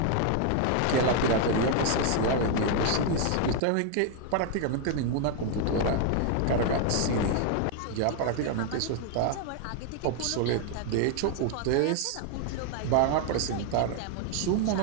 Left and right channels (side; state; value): both; different; correlation 0.00